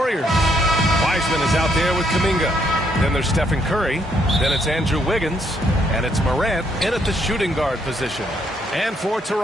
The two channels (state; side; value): normal; both; correlation 0.72